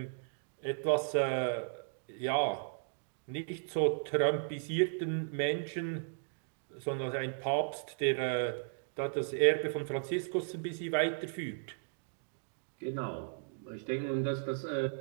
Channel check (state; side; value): silent; left; digital silence